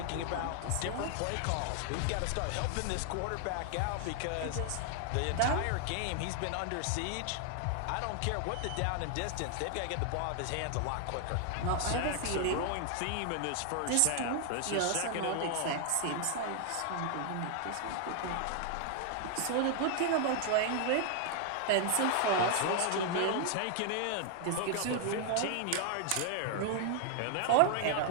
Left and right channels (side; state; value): both; different; correlation 0.00